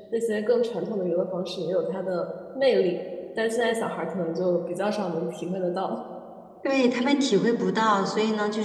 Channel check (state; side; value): identical; both; correlation 1.00